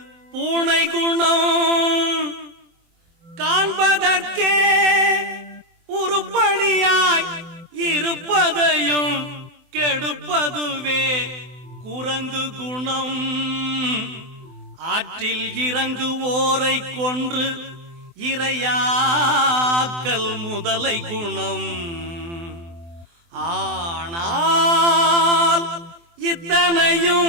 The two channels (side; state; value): left; late; 24 ms